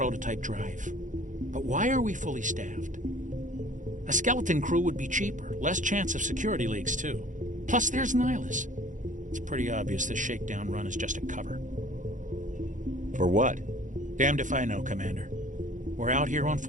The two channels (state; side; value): late; left; 0.37 ms